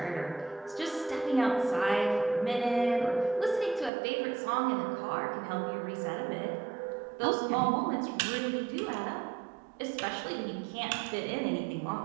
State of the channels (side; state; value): left; drops out; at 3.9 s